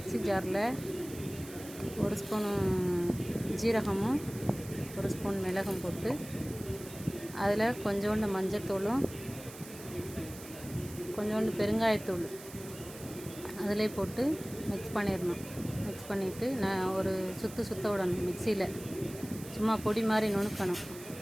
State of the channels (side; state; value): right; noise; hiss, 15 dB below the sound